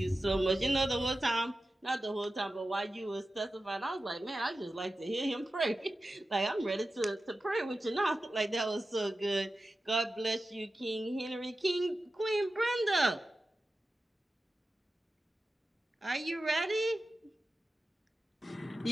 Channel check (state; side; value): normal; both; correlation 0.94